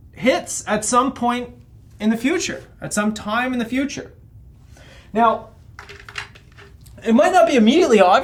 hits at some point in the future, at some time in the future. Now, it might not be immediately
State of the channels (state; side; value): identical; both; correlation 1.00